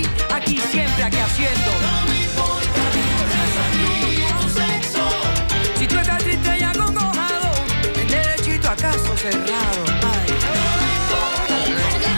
Aquí siempre, aquí haciendo. No me importa ni tu raza ni tu sexo. Si tú estás triste y acongojado, en derechito a caso cerrado. Ay. No me importa ni tu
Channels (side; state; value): both; inverted; correlation -1.00